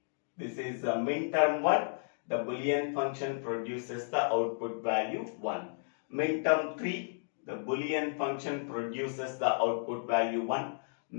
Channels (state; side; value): silent; right; digital silence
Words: This is the minterm 1. The Boolean function produces the output value 1. Minterm 3. The Boolean function produces the output value 1.